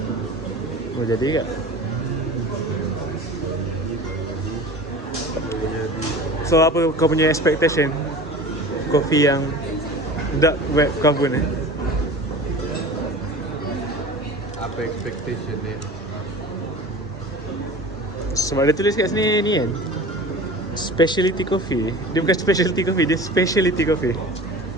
Oh, jadi tak? So, apa kau punya expectation kopi yang dark web Kavun Apa expectation dia? Sebab dia tulis kat sini ni kan, specialty coffee. Dia bukan specialty coffee, dia specialty coffee.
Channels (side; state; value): both; normal; correlation 0.38